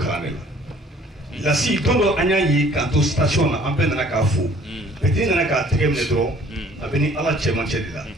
ne la si tondo anya yi ka to station na ampe na ka fu petit na ka tegem ne dro abeni ala chema chedila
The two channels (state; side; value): normal; both; correlation 0.55